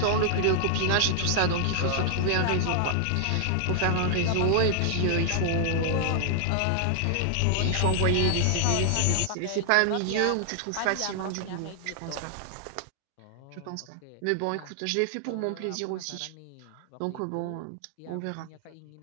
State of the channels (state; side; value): different; both; correlation 0.00